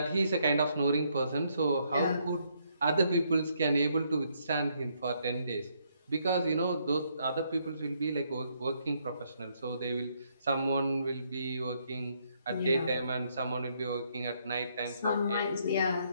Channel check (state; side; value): inverted; both; correlation -0.72